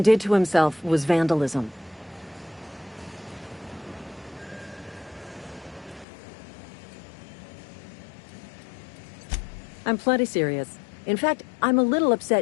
did to himself was vandalism. I'm plenty serious. In fact, I'm a little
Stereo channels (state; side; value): drops out; right; at 6.1 s